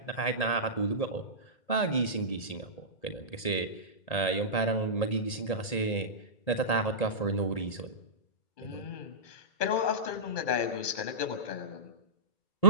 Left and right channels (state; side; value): late; right; 1.8 ms